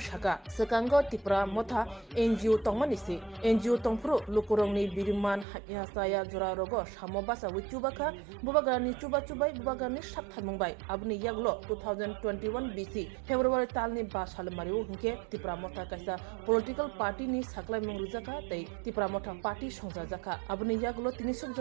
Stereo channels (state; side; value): drops out; left; at 5.5 s